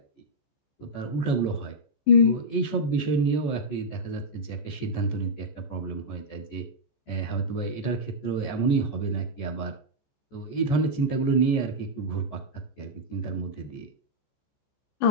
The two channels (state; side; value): late; right; 14 ms